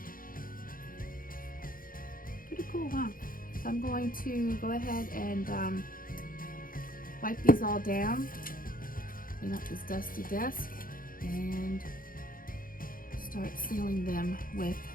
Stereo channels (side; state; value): right; late; 0.41 ms